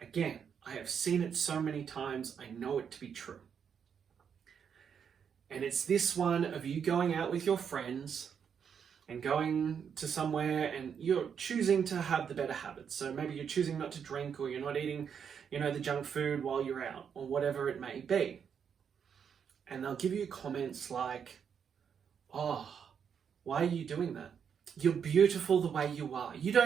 again, I have seen it so many times, I know it to be true. And it's this one of you going out with your friends and going to somewhere and you're choosing to have the better habits. So maybe you're choosing not to drink, or you're not eating, the junk food while you're out, or whatever it may be. And they'll give you comments like, "Oh, why are you doing that? You're beautiful the way you are. You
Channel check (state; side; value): quieter; left; 7.4 dB